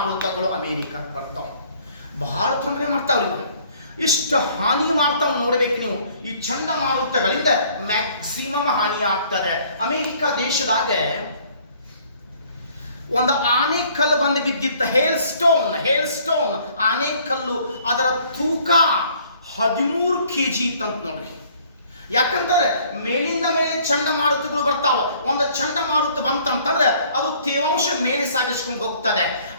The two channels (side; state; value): both; inverted; correlation -0.58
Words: ಅಮೆರಿಕಕ್ಕೆ ಬರ್ತಾವ. ಬಹಳ ತೊಂದರೆ ಮಾಡ್ತಾವ್ರಿ ಇವಾಗ. ಇಷ್ಟು ಹಾನಿ ಮಾಡ್ತಾವ್ ನೋಡ್ಬೇಕು ನೀವು. ಈ ಚಂಡಮಾರುತಗಳಿಂದ ಮ್ಯಾಕ್ಸಿಮಮ್ ಹಾನಿ ಆಗ್ತದೆ. ಅಮೆರಿಕ ದೇಶದಾಗ ಒಂದು ಆನೆಕಲ್ಲು ಬಂದು ಬಿದ್ದಿತ್ತ, ಹೇಲ್ ಸ್ಟೋನ್ ಆನೆಕಲ್ಲು. ಅದರ ತೂಕ 13 kg ಇತ್ತಂತ ನೋಡ್ರಿ. ಯಾಕಂತಂದ್ರೆ ಮೇಲಿಂದ ಮೇಲೆ ಚಂಡಮಾರುತಗಳು ಬರ್ತಾವ. ಒಂದು ಚಂಡಮಾರುತ ಬಂತಂತಂದ್ರೆ ಅದು ತೇವಾಂಶ ಮೇಲೆ ಸಾಗಿಸ್ಕೊಂಡು ಹೋಗ್ತದೆ.